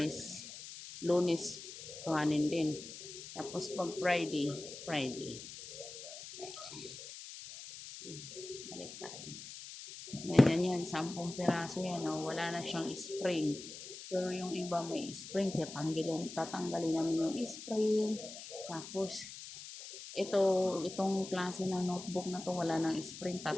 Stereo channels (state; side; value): noise; left; hiss, 12 dB below the sound